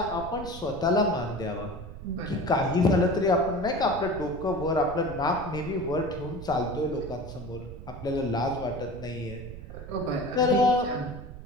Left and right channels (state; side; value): noise; right; rumble, 12 dB below the sound